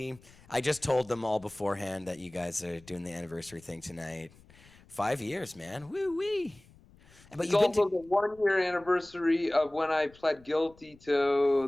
I just told them all beforehand that you guys are doing the anniversary thing tonight. 5 years, man. Woo-wee. But It's you've been also to... the 1-year anniversary of when I pled guilty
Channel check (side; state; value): left; noise; rumble, 26 dB below the sound